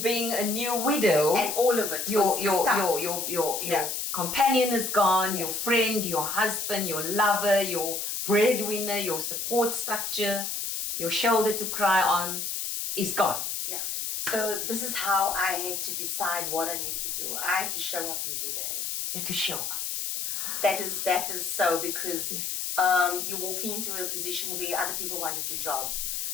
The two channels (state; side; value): noise; left; hiss, 3 dB below the sound